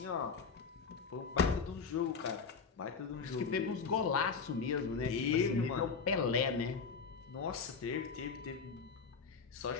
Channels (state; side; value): quieter; right; 5.5 dB